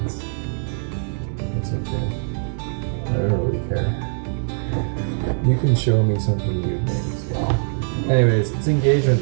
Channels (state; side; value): silent; left; digital silence